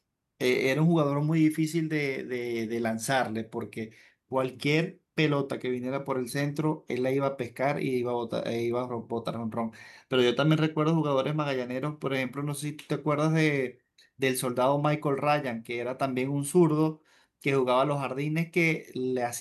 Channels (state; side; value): identical; both; correlation 1.00